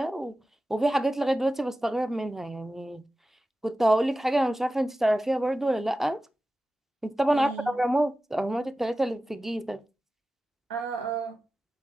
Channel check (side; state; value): both; normal; correlation 0.94